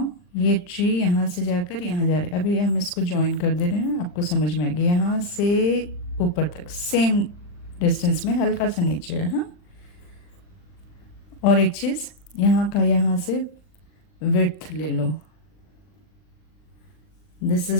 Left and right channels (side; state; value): right; late; 39 ms